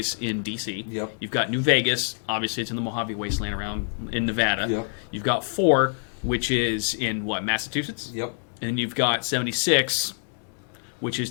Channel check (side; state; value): right; silent; 61 dB below the other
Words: in DC. Yep. You've got New Vegas, obviously it's in the Mojave Wasteland around in Nevada. Yep. You've got 4, which is in Massachusetts. Yep. And you've got 76, which is